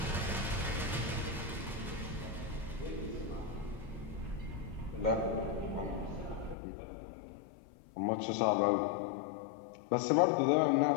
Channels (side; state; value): right; drops out; at 6.6 s